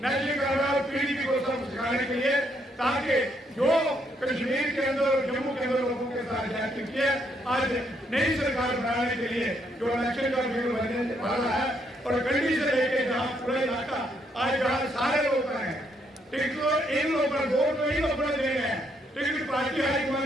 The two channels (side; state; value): both; normal; correlation 0.74